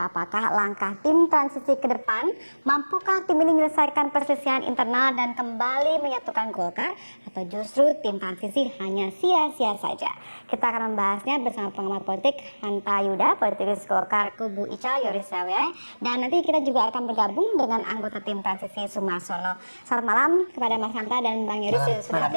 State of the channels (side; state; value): both; inverted; correlation -1.00